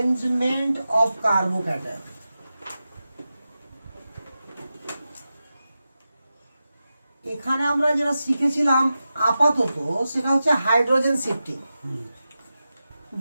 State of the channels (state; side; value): inverted; both; correlation -0.92